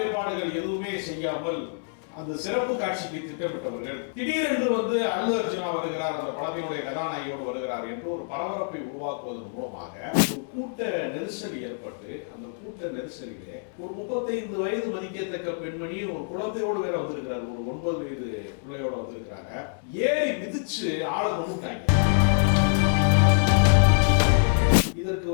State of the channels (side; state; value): right; silent; digital silence